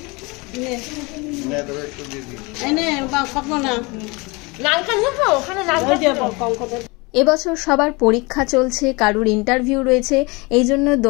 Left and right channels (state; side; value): quieter; right; 26.3 dB